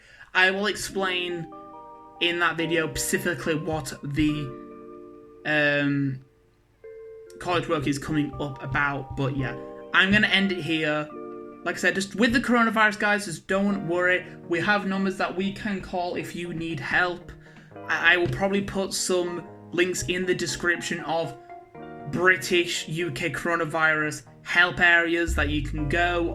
I will explain in that video specifically what the college work is coming up about. But yeah, I'm gonna end it here. Like I said, just with the coronavirus, guys, just don't worry. We have numbers that we can call if you need help. I will probably put some links in the description of British, UK coronavirus help areas that you can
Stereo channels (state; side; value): identical; both; correlation 1.00